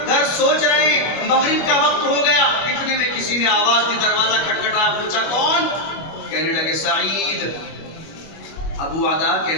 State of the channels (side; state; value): right; late; 25 ms